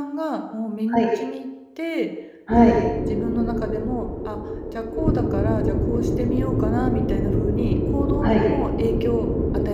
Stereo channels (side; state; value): both; identical; correlation 1.00